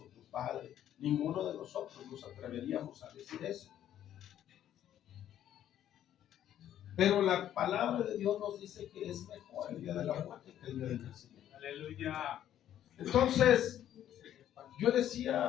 tu padre. Ninguno de nosotros nos atreveríamos a decir eso. Pero la palabra de Dios nos dice que es mejor el día de la muerte que el día del nacimiento. Aleluya. Entonces, yo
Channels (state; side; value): quieter; right; 11.2 dB